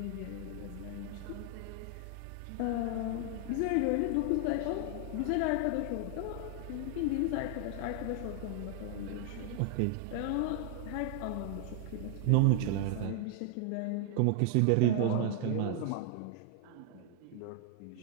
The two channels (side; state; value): both; different; correlation 0.00